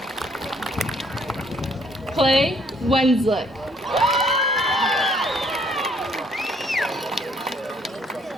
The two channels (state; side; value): normal; both; correlation 0.64